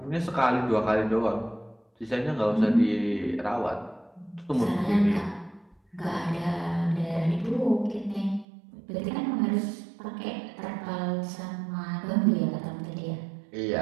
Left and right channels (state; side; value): drops out; left; at 8.5 s